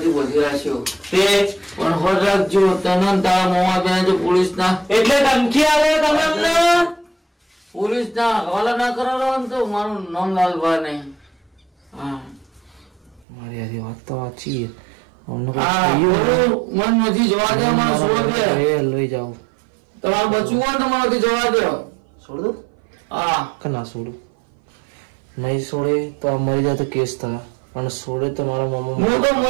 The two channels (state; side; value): drops out; left; at 13.2 s